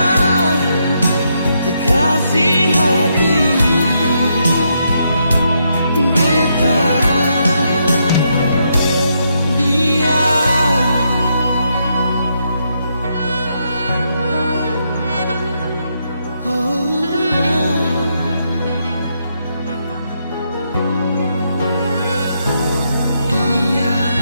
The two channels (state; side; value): inverted; both; correlation -0.78